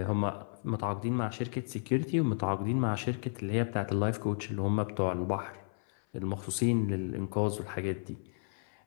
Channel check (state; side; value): silent; right; 56 dB below the other